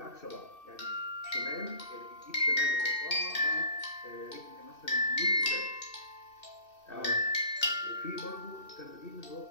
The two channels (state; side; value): late; right; 2.6 ms